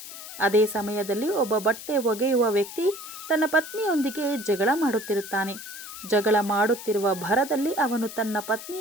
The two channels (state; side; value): noise; left; hiss, 12 dB below the sound